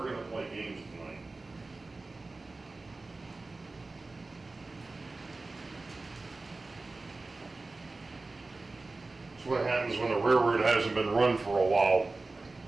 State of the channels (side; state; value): left; quieter; 3.4 dB